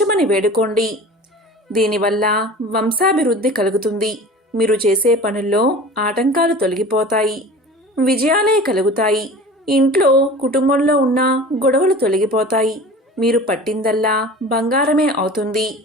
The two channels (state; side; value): normal; both; correlation 0.39